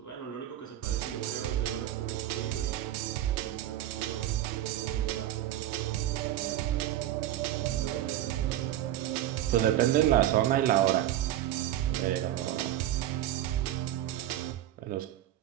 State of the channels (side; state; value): left; quieter; 12.8 dB